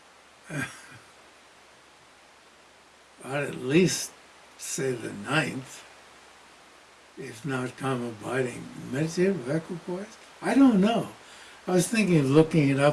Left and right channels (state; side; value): identical; both; correlation 1.00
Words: I'd at least say the ninth, if not calm abiding. Meditative equipoise? I don't know. I was thinking of looking it